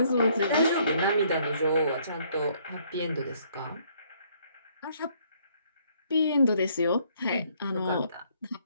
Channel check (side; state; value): both; inverted; correlation -0.66